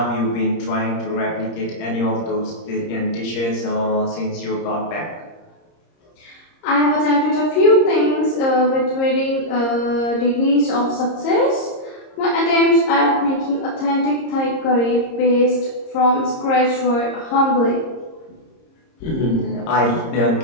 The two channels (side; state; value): right; late; 30 ms